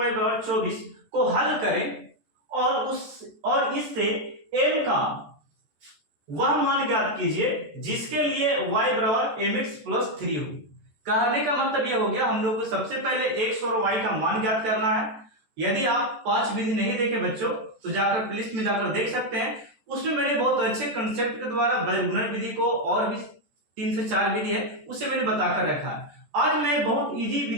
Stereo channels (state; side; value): late; left; 14 ms